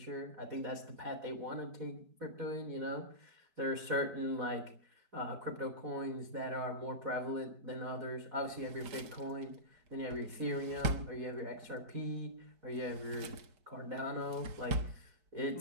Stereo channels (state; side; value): late; left; 4.7 ms